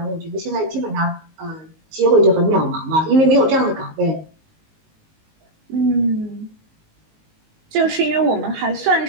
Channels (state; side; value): late; left; 19 ms